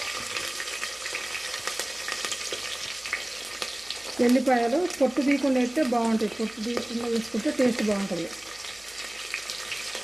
ఎల్లిపాయలు పొట్టు తీయకుండా అయితే బాగుంటాయి. పొట్టు తీయకుండా వేసుకుంటే టేస్ట్ బాగుంటుంది.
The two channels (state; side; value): noise; right; hum, 28 dB below the sound